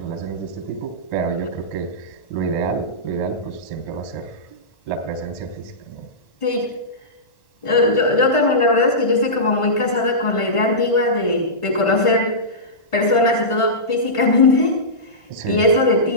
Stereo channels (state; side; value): late; right; 1.5 ms